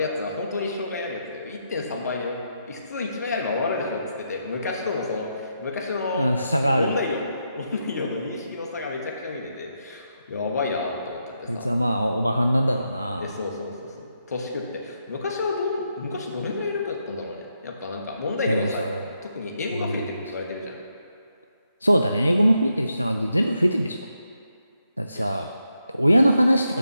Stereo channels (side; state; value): both; inverted; correlation -0.82